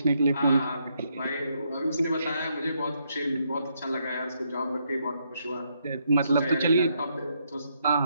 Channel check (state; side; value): inverted; both; correlation -0.76